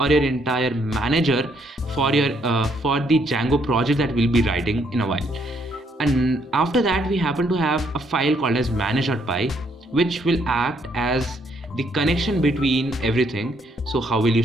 entire manager for the Django project that we'll be writing in a while. And after that, we happen to have a file called as manage.py, which will act as the connection between everything. So how will you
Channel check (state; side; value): normal; both; correlation 0.71